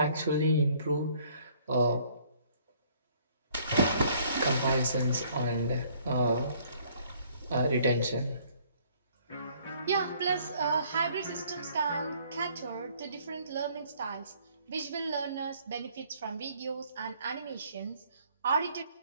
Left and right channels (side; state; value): both; inverted; correlation -0.61